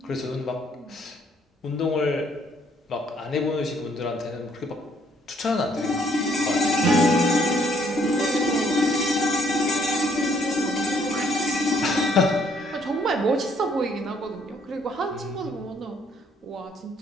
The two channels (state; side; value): normal; both; correlation 0.66